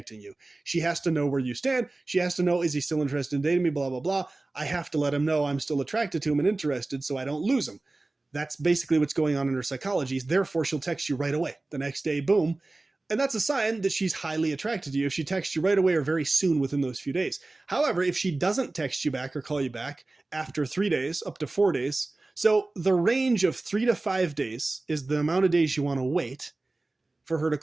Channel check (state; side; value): quieter; left; 3.1 dB